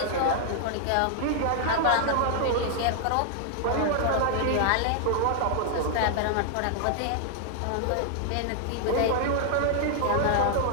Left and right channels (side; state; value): both; different; correlation 0.00